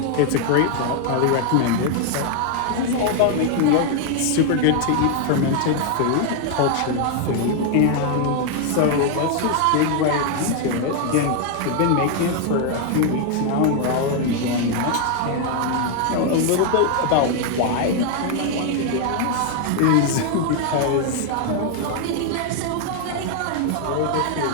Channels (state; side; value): different; both; correlation 0.00